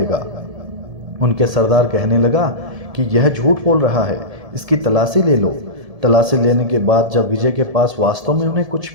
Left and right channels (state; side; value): late; left; 1.7 ms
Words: उनके सरदार कहने लगा कि यह झूठ बोल रहा है, इसकी तलाशी ले लो। तलाशी लेने के बाद जब विजय के पास वास्तव में उन्हें कुछ